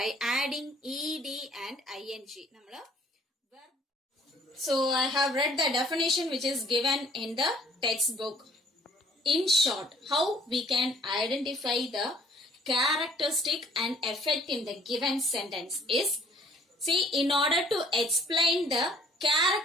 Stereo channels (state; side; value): normal; both; correlation 0.57